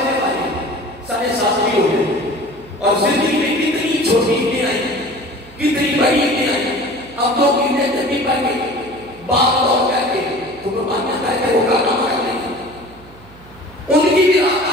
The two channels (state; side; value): noise; right; hum, 23 dB below the sound